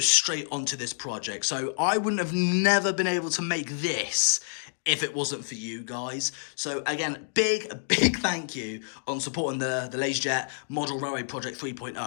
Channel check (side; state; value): right; silent; digital silence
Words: straight onto this project. So I wouldn't have never been able to make this if it wasn't for you guys. So again, big thank you on supporting the LaZeR Model Railway Project